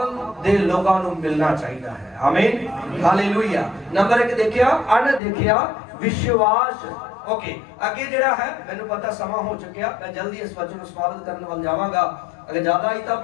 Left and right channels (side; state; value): right; drops out; at 5.2 s